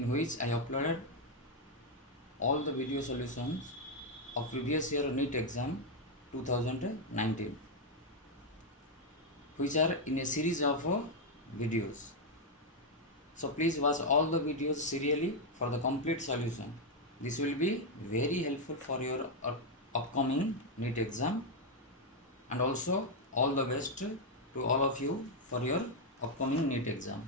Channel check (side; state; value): both; normal; correlation 0.01